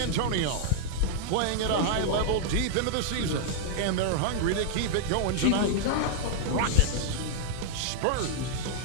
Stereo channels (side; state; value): both; different; correlation 0.00